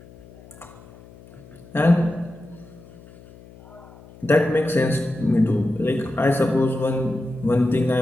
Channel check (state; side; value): noise; left; hum, 22 dB below the sound